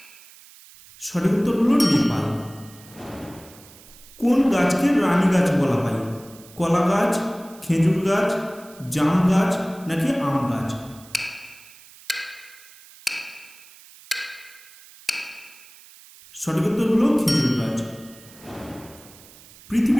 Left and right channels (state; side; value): noise; right; hiss, 22 dB below the sound